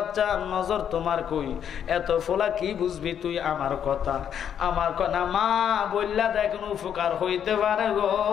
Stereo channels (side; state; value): right; quieter; 8.8 dB